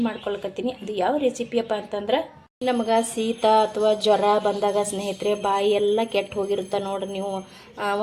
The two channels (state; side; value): identical; both; correlation 1.00